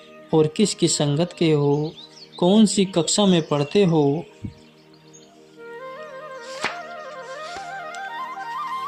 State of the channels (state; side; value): identical; both; correlation 1.00